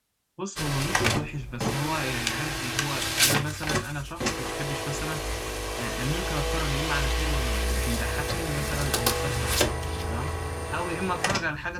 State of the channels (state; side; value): identical; both; correlation 1.00